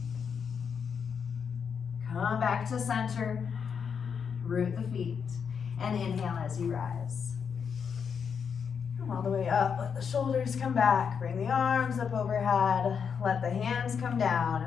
Come back to center. Root the feet. And inhale as you rise. Come all the way up. Let the shoulders come back. Bring the arms up overhead. Let the hands come down.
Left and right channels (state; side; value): quieter; right; 6.7 dB